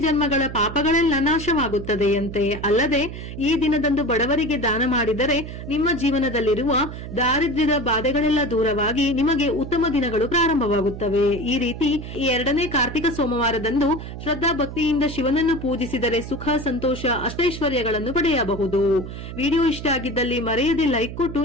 ಜನ್ಮಗಳ ಪಾಪಗಳೆಲ್ಲ ನಾಶವಾಗುತ್ತದೆಯಂತೆ. ಅಲ್ಲದೆ ಈ ದಿನದಂದು ಬಡವರಿಗೆ ದಾನ ಮಾಡಿದರೆ ನಿಮ್ಮ ಜೀವನದಲ್ಲಿರುವ ದಾರಿದ್ರ್ಯದ ಬಾಧೆಗಳೆಲ್ಲ ದೂರವಾಗಿ ನಿಮಗೆ ಉತ್ತಮ ದಿನಗಳು ಪ್ರಾರಂಭವಾಗುತ್ತವೆ. ಈ ರೀತಿ ಈ 2ನೇ ಕಾರ್ತಿಕ ಸೋಮವಾರದಂದು ಶ್ರದ್ಧಾ ಭಕ್ತಿಯಿಂದ ಶಿವನನ್ನು ಪೂಜಿಸಿದರೆ ಸುಖ, ಸಂತೋಷ, ಅಷ್ಟೈಶ್ವರ್ಯಗಳನ್ನು ಪಡೆಯಬಹುದು. ವಿಡಿಯೋ ಇಷ್ಟ ಆಗಿದ್ದಲ್ಲಿ ಮರೆಯದೆ ಲೈಕ್ ಕೊಟ್ಟು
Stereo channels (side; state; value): right; noise; hum, 10 dB below the sound